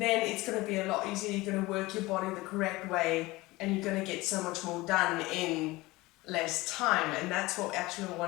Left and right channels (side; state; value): right; quieter; 20.7 dB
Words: it's going to be a lot easier. You're going to work your body the correct way, and you're going to get so much more done in less time. And that's what we actually